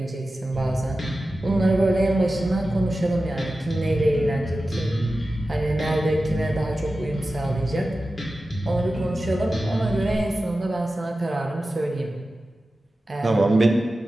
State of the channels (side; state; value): both; normal; correlation 0.94